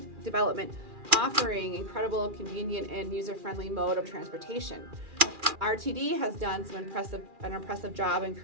development, offering incredible, convenient, and user-friendly mode of transportation. RTD has done an impressive job in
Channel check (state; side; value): late; left; 2.4 ms